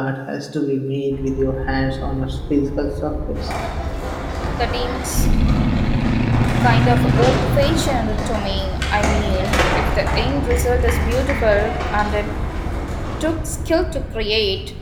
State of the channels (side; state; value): both; identical; correlation 1.00